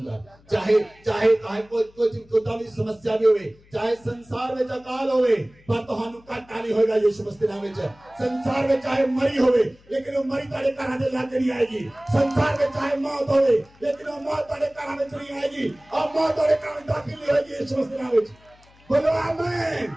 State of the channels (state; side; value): noise; left; hum, 28 dB below the sound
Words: ਚਾਹੇ ਕੋਈ ਦੀ ਸਮੱਸਿਆ ਵੀ ਹੋਵੇ, ਚਾਹੇ ਸੰਸਾਰ ਵਿੱਚ ਅਕਾਲ ਹੋਵੇ, ਪਰ ਤੁਹਾਨੂੰ ਘਾਟਾ ਨਹੀਂ ਹੋਏਗਾ ਯਿਸੂ ਮਸੀਹ ਦੇ ਨਾਮ ਵਿੱਚ। ਸੰਸਾਰ ਵਿੱਚ ਚਾਹੇ ਮਰੀ ਹੋਵੇ ਲੇਕਿਨ ਉਹ ਮਰੀ ਤੁਹਾਡੇ ਘਰਾਂ ਦੇ ਲਾਗੇ ਨਹੀਂ ਆਏਗੀ। ਸੰਸਾਰ ਵਿੱਚ ਚਾਹੇ ਮੌਤ ਹੋਵੇ ਲੇਕਿਨ ਉਹ ਮੌਤ ਤੁਹਾਡੇ ਘਰਾਂ ਵਿੱਚ ਨਹੀਂ ਆਏਗੀ। और मौत ਤੁਹਾਡੇ ਘਰਾਂ ਵਿੱਚ ਦਾਖਲ ਨਹੀਂ ਹੋਏਗੀ ਯਿਸੂ ਮਸੀਹ ਦੇ ਨਾਮ ਵਿੱਚ। बोलो आमीन।